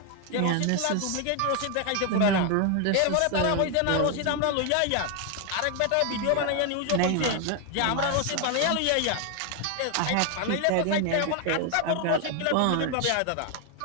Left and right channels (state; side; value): different; both; correlation 0.01